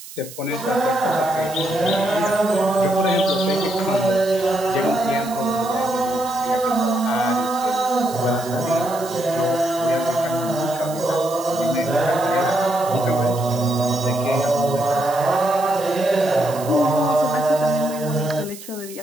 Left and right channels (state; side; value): noise; right; hiss, 15 dB below the sound